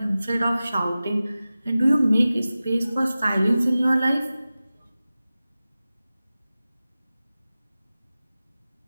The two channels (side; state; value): both; inverted; correlation -0.96